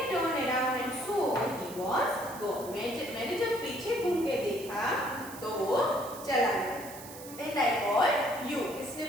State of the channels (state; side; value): noise; right; hiss, 15 dB below the sound